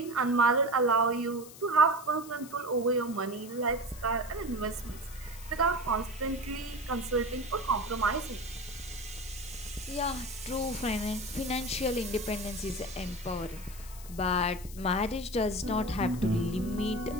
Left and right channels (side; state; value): left; noise; hiss, 17 dB below the sound